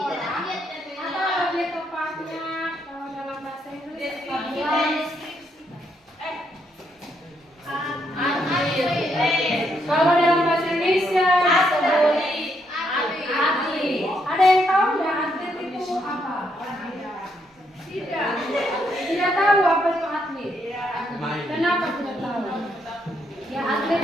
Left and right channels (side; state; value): both; normal; correlation 0.76